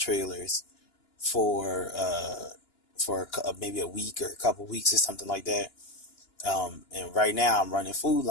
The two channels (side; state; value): right; late; 2.9 ms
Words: for maybe a week or a couple weeks or something like that. And right now I'm running Food